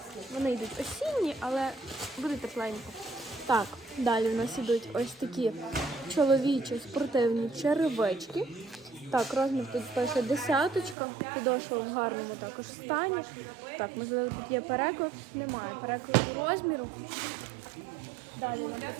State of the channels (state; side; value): drops out; left; at 11.0 s